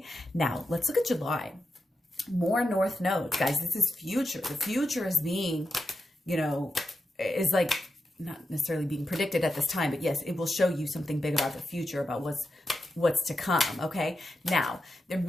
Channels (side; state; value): both; normal; correlation 0.88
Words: now let's look at July. More North Nodes, guys. This is future. The future is being, you know, is like not necessarily being predicted at this time, but yes, it will show you something big about the future, about what's to come. Okay, now there